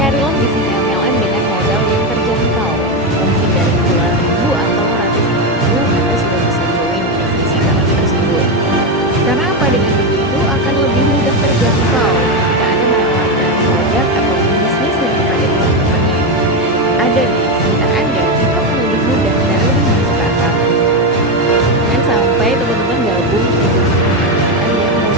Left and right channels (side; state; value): both; normal; correlation 0.10